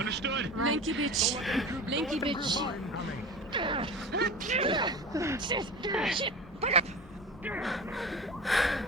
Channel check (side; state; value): both; normal; correlation 0.33